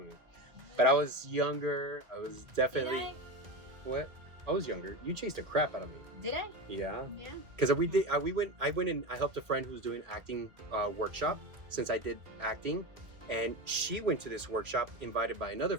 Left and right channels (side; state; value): left; late; 1.6 ms